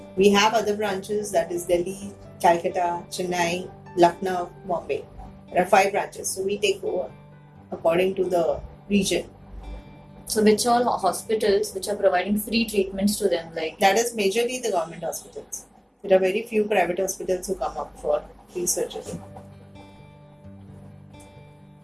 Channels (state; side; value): identical; both; correlation 1.00